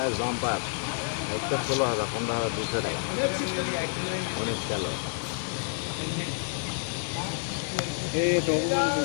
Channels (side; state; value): right; silent; digital silence